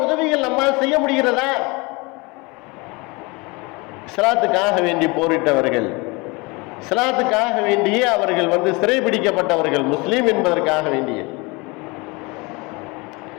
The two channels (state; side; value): quieter; right; 26.6 dB